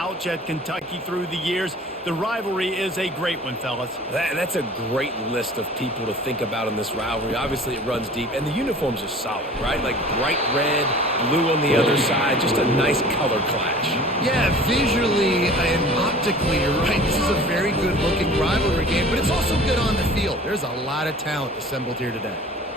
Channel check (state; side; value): normal; both; correlation 0.45